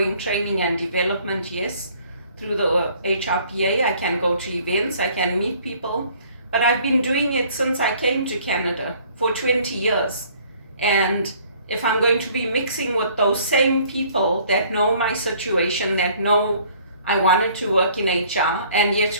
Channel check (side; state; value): both; inverted; correlation -0.57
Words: training and development, yes, through the HRPA. I can go to events, I can meet people, but I've been doing it since I came to Canada for 20 years. And if I'm going to be mixing with those same people that know my situation, that know I wanted to work in HR, and yet